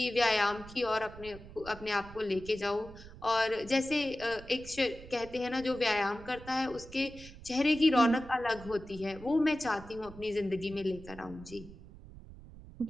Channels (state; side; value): noise; right; rumble, 17 dB below the sound